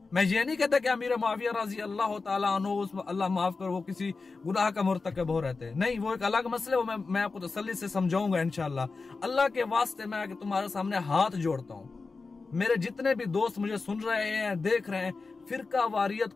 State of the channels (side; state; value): right; quieter; 4.1 dB